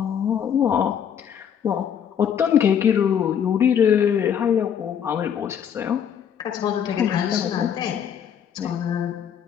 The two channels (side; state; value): right; quieter; 8.4 dB